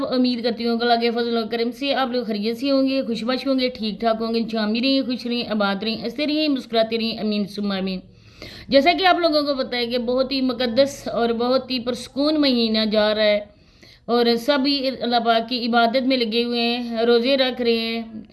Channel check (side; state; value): both; identical; correlation 1.00